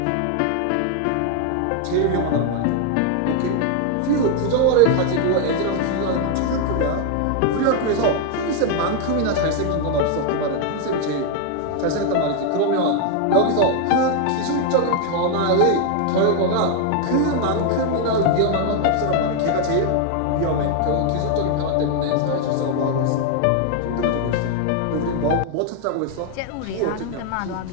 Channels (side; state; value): both; different; correlation 0.00